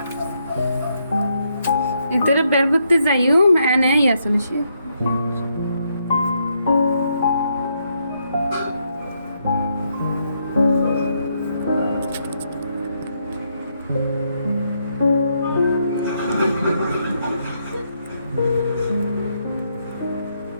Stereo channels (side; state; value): both; inverted; correlation -0.77